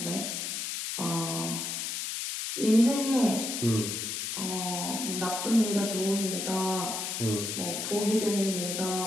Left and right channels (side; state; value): left; noise; hiss, 3 dB below the sound